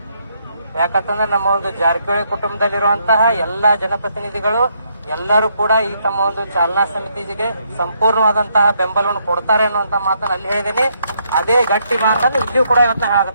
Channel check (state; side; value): inverted; both; correlation -0.74